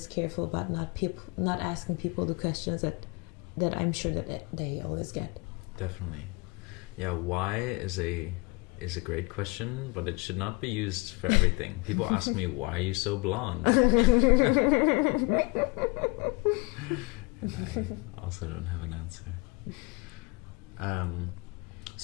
careful about not asking people the questions that I'm sure that they always get. Definitely. Yeah, why is a great question, but it should not be used for everything. People ask me, why are you so blonde? And I also don't have an answer.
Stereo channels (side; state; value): right; quieter; 26.8 dB